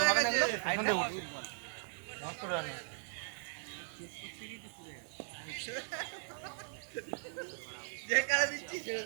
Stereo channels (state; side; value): silent; left; digital silence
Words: গেছে এখানে নষ্ট রান যে কারে দিচ্ছি ছেড়ে